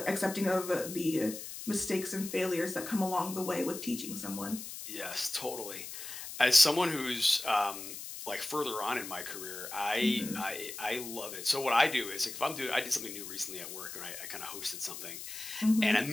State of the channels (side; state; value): left; noise; hiss, 9 dB below the sound